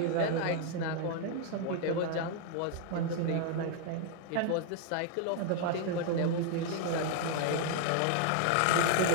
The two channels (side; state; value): both; different; correlation 0.00